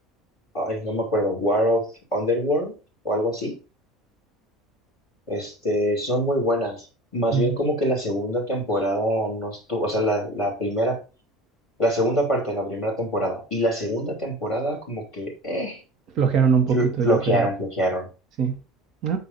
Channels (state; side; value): normal; both; correlation 0.38